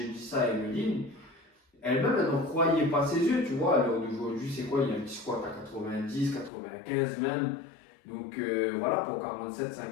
dit ça à Emeline, elle-même, elle n'en croyait pas ses yeux, tu vois. À l'heure d'aujourd'hui, c'est quoi? Il y a un petit squat à 90, 95 même. Donc voilà, pour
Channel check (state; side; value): drops out; right; at 6.5 s